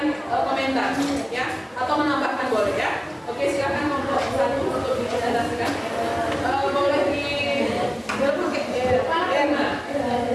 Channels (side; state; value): both; identical; correlation 1.00